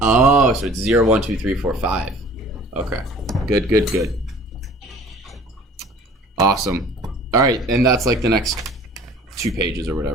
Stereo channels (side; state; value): both; normal; correlation 0.49